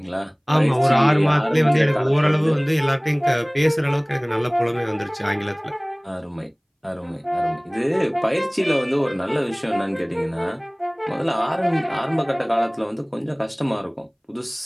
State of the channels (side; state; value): both; identical; correlation 1.00